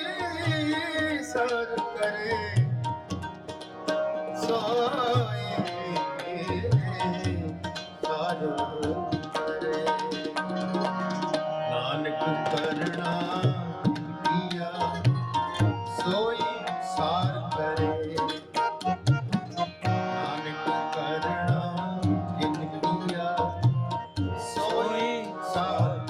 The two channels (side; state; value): both; identical; correlation 1.00